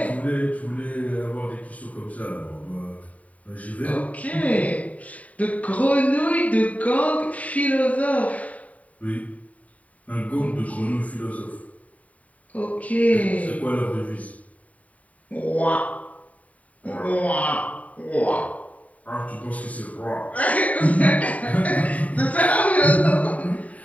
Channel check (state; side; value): late; right; 0.069 ms